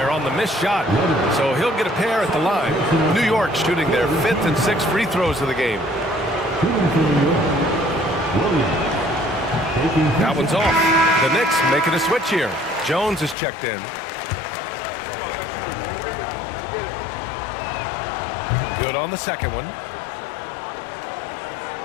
on the missed shot. So he'll get a pair at the line. New York shooting their 5th and 6th free throws of the game. That one's off. The Knicks making a switch here. Jones is checked in. Good on the second one.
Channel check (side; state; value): right; drops out; at 13.4 s